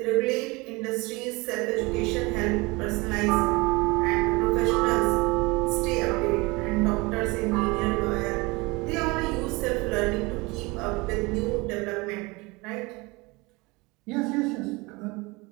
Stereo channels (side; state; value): left; quieter; 24.8 dB